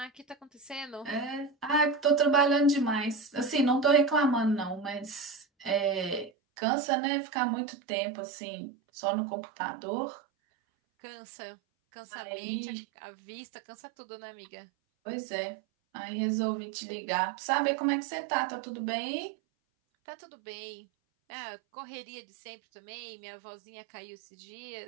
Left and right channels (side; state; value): left; drops out; at 6.3 s